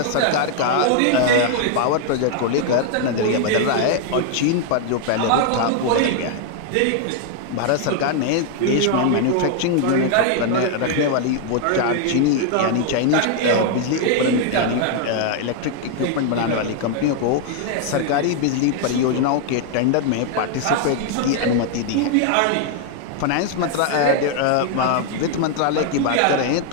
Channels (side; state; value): both; different; correlation 0.00